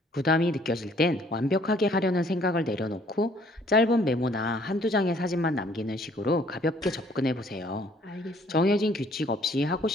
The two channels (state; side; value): normal; both; correlation 0.60